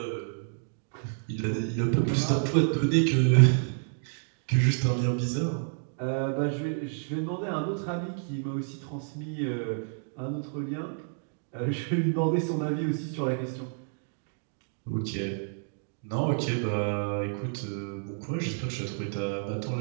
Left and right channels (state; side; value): silent; left; digital silence